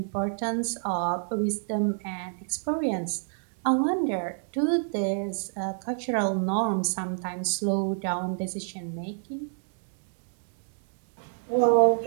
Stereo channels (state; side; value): silent; left; digital silence